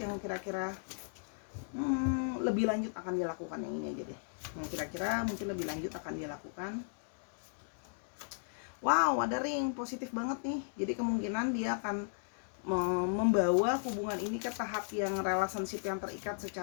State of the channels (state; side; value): silent; right; digital silence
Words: yang kira-kira lebih lanjut akan dia lakukan. Yang ini aja deh, yang kira-kira mungkin lebih lanjut akan dia lakukan. Wow, ada ring positif banget nih. Jadi kemungkinan dia akan membawa hubungan ini ke tahap yang relationship yang terikat